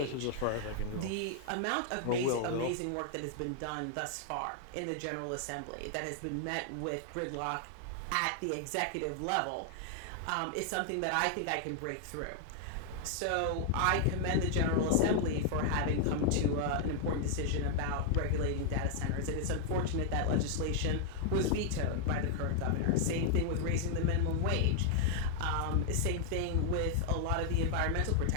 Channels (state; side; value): different; both; correlation 0.00